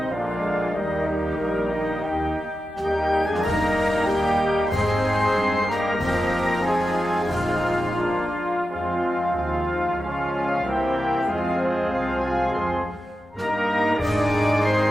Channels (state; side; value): normal; both; correlation 0.91